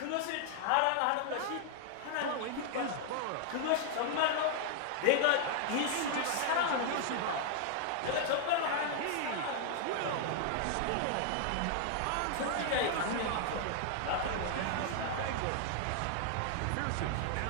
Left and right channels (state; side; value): different; both; correlation 0.00